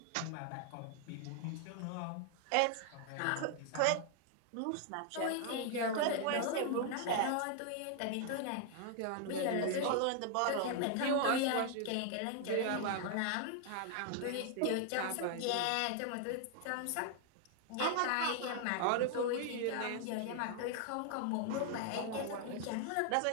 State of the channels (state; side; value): different; both; correlation 0.00